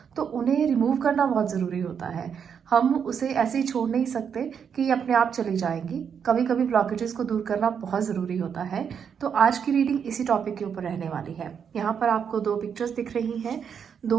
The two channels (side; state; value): left; quieter; 7.3 dB